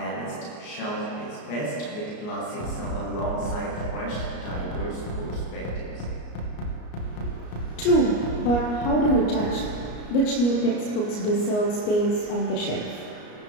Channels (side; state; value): right; late; 33 ms